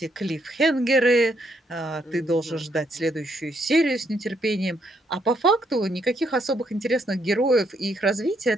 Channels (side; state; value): both; normal; correlation 0.74